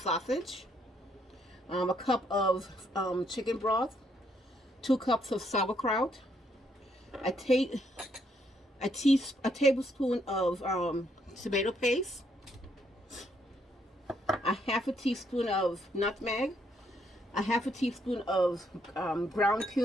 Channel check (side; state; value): both; normal; correlation 0.72